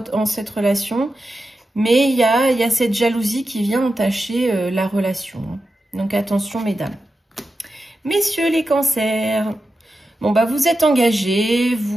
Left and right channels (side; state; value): both; normal; correlation 0.90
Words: en cette relation. Mais il y a cette jalousie qui vient entacher la relation. Hein. Donc attention, mesdames. Messieurs les cancers, bon bah vous êtes engagés,